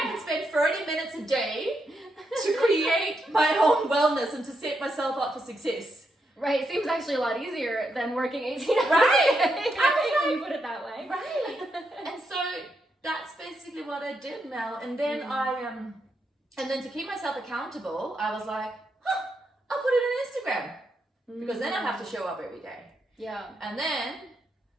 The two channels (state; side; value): normal; both; correlation 0.82